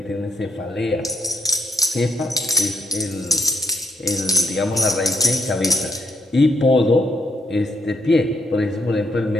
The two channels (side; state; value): both; normal; correlation 0.73